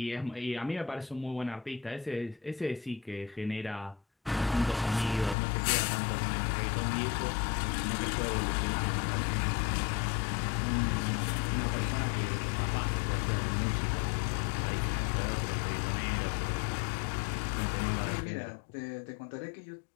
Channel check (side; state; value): right; drops out; at 5.4 s